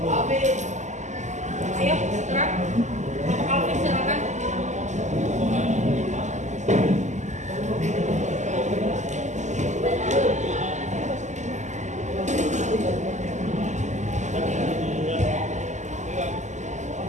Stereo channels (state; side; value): late; left; 0.34 ms